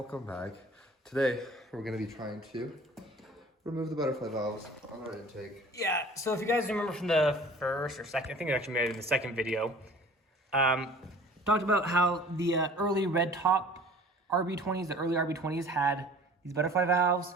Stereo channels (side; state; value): both; normal; correlation 0.47